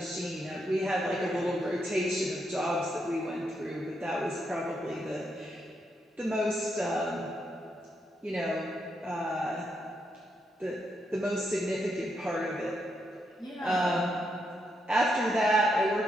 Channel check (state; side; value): normal; both; correlation 0.80